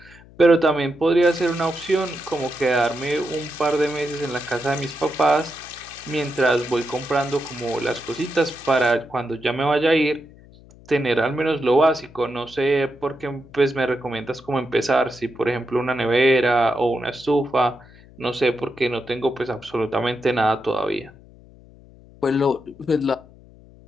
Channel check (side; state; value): left; noise; hum, 23 dB below the sound